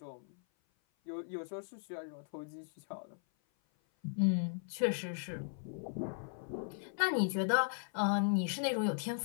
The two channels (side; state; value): right; silent; 53 dB below the other